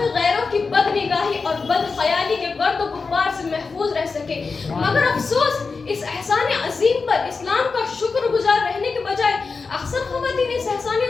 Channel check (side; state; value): right; quieter; 4.5 dB